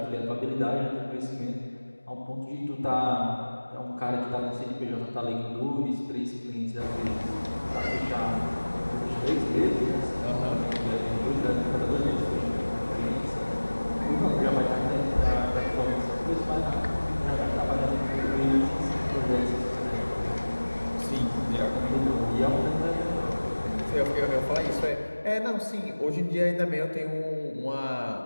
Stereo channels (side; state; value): both; inverted; correlation -1.00